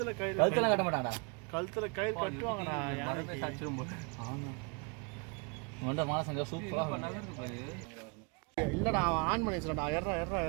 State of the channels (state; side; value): quieter; left; 33.1 dB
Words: கயிறு கழுத்துல கட்ட மாட்டாங்கடா. கழுத்துல கயிறு கட்டுவாங்கடா. ஆமாம் உண்ட மாசங்க சூப்பராக இல்லடா அவன் ஆன் பண்ணி வச்சுடா. எர்றா